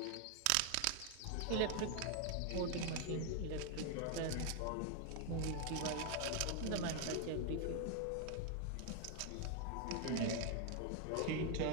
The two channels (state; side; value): different; both; correlation 0.01